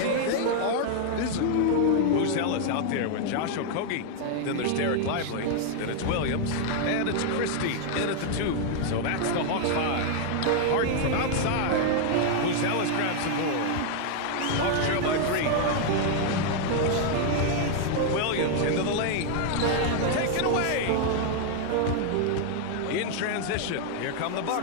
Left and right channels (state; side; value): different; both; correlation 0.00